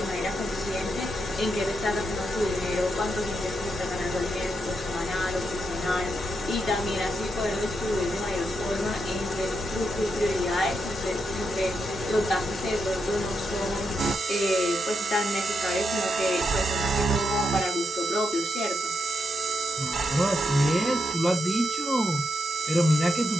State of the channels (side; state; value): both; normal; correlation 0.83